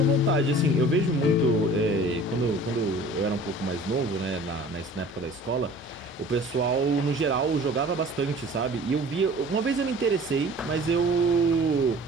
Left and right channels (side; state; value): both; normal; correlation 0.46